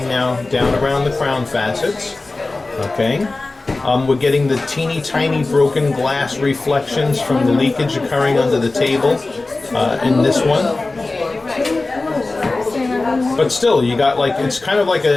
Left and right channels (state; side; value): quieter; right; 3.3 dB